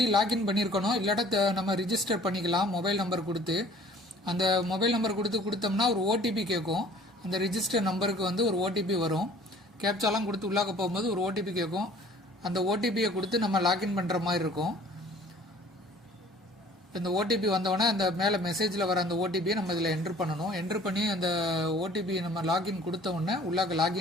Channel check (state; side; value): normal; both; correlation 0.51